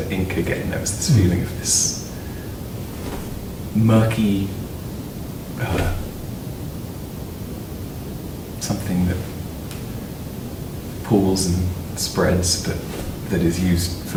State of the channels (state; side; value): identical; both; correlation 1.00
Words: ink again, there was this feeling of this murky something that pools and spreads, but that is used for